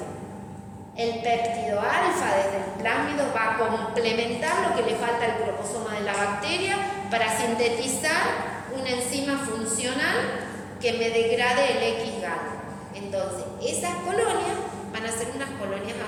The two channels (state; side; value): identical; both; correlation 1.00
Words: El péptido alfa desde el plásmido va a complementar lo que le falta al cromosoma de la bacteria para sintetizar una enzima funcional que me degrade el X-gal. Entonces, esas colonias van a ser unas colonias